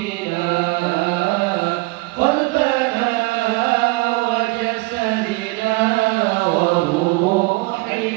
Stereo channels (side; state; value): left; quieter; 23.6 dB